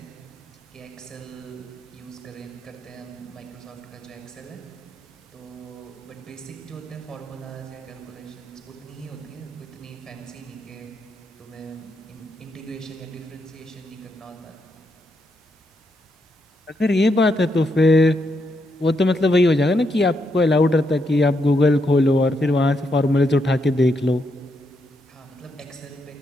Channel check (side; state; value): both; normal; correlation 0.80